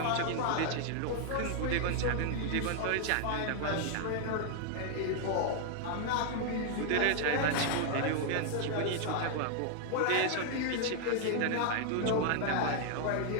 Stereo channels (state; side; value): different; both; correlation 0.00